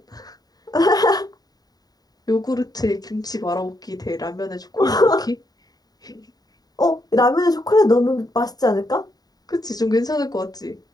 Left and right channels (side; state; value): right; late; 0.19 ms